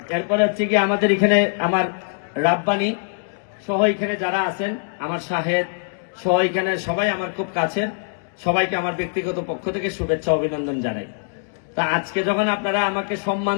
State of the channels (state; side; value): silent; right; digital silence